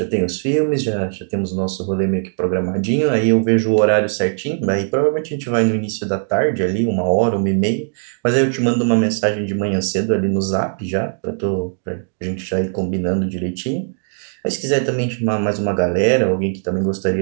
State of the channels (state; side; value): silent; left; digital silence